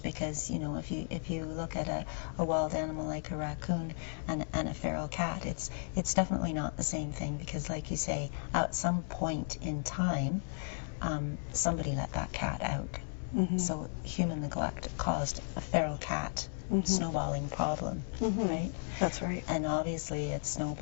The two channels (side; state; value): right; silent; digital silence